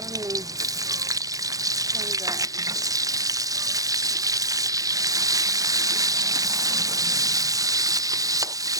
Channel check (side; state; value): left; late; 0.17 ms